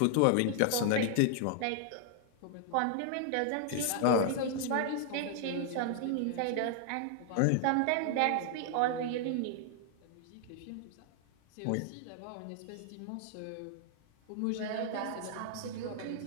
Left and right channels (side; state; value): both; different; correlation 0.00